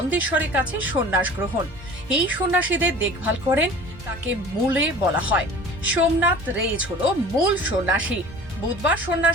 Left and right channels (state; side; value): normal; both; correlation 0.43